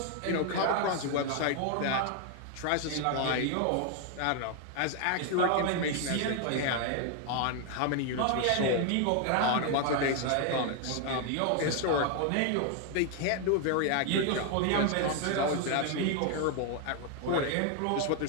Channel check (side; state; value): both; different; correlation 0.00